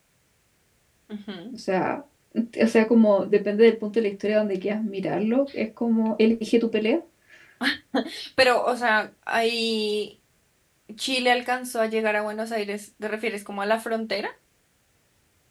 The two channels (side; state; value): both; identical; correlation 1.00